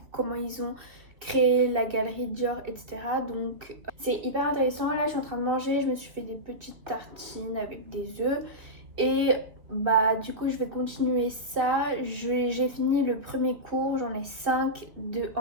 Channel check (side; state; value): left; late; 2.8 ms